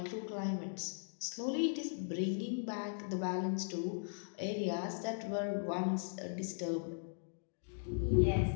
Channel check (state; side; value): silent; right; digital silence